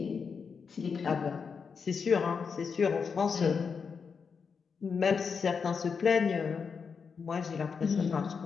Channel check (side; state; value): right; quieter; 5.8 dB